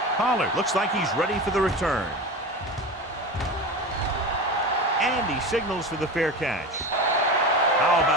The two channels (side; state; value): both; normal; correlation 0.27